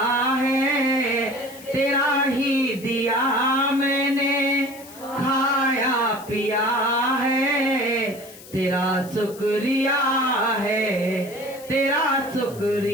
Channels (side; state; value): left; noise; hiss, 19 dB below the sound